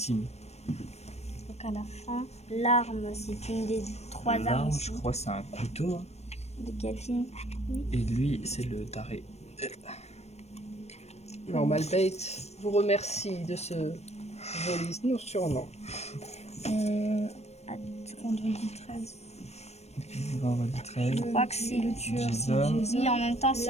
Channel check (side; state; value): right; late; 0.31 ms